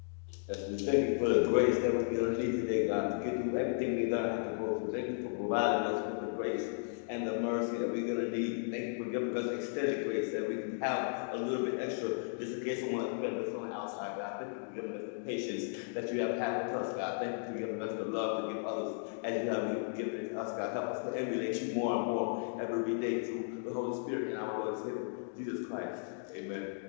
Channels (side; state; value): right; silent; digital silence